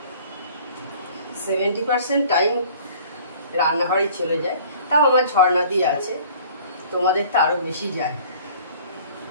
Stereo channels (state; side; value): inverted; both; correlation -0.50